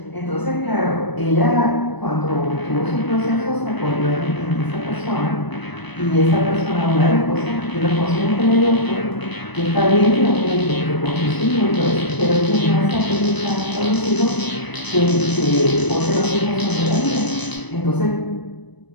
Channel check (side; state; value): right; late; 1.0 ms